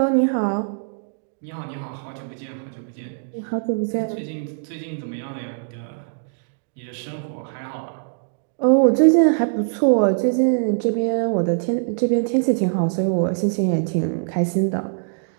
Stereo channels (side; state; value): left; silent; digital silence